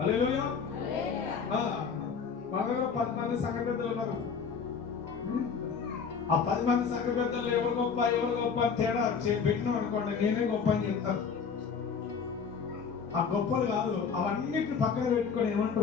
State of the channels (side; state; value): right; quieter; 6.0 dB